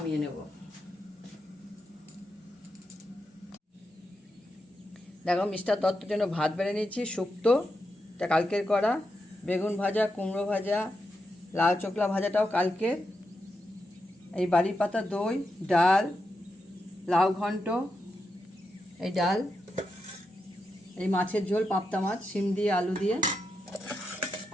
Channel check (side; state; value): both; normal; correlation 0.86